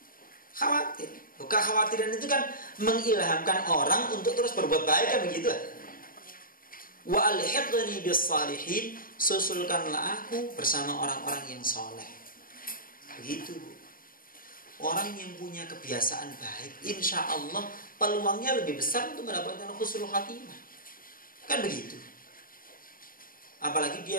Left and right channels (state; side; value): late; right; 0.41 ms